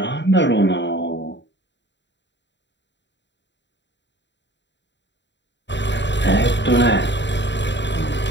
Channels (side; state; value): right; late; 0.52 ms